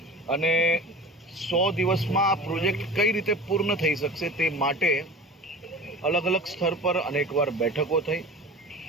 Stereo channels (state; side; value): normal; both; correlation 0.37